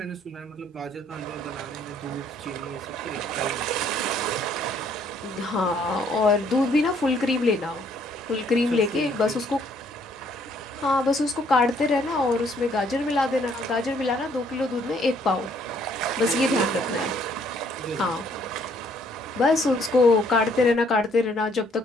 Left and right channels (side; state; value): both; normal; correlation 0.65